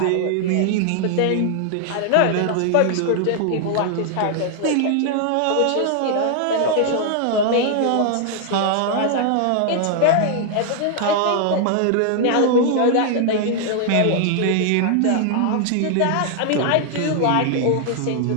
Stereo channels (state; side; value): different; both; correlation 0.00